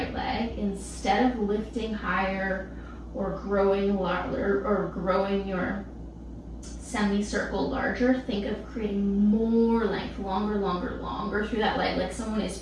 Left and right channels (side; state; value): both; identical; correlation 1.00